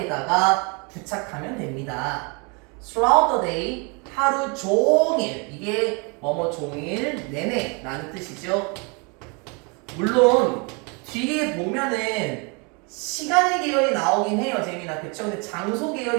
부착하면 됩니다. throughout the day, 하루 종일. 이게 뭐뭐 종일 내내 라는 뜻이죠. 물론 뒤에 보면은 시간의 계열이 나오긴 해요, 재민아. 그쵸? 근데 장소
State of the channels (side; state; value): left; quieter; 32.3 dB